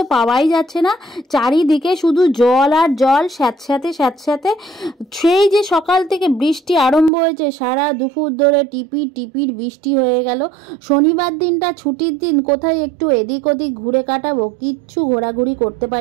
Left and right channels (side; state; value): left; drops out; at 7.1 s